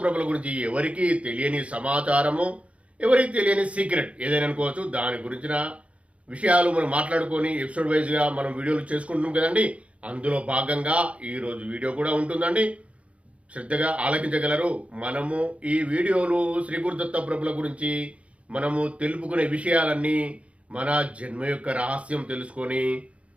ప్రభుల గురించి ఎవరికి తెలియని సమాచారము, ఎవరికి తెలియని సీక్రెట్ ఏదైనా అనుకోవచ్చు, దాని గురించిన విషయాలు మనం మాట్లాడుకొని ఎపిసోడ్ వైజ్గా మనం వీడియోలు చేసుకుంటున్నాం కదండి. అందులో భాగంగా ఈరోజు వీడియో కూడా ఉంటుందండి. శ్రద్ధగా ఆలకించగలరు. మనము ఈ వీడియోలు శ్రీ గురుదత్త ప్రభుల గురించి మనము తెలుపుకునే విషయాలన్నీ మన జన్మ యొక్క రహస్యం తెలుసుకొని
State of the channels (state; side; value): late; left; 0.063 ms